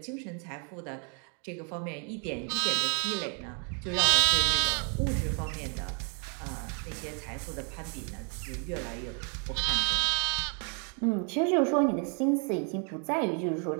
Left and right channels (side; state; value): left; quieter; 40.0 dB